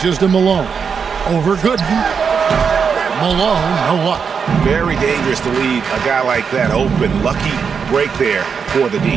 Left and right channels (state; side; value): quieter; left; 6.3 dB